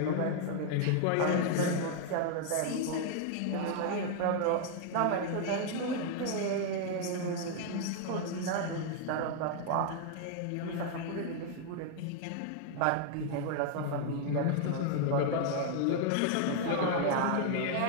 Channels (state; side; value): different; both; correlation 0.00